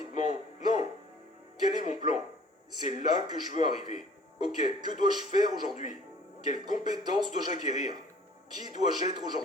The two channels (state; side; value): normal; both; correlation 0.52